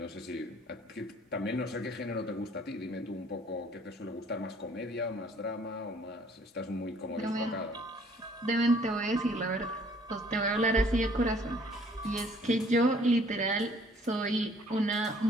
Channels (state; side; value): normal; both; correlation 0.58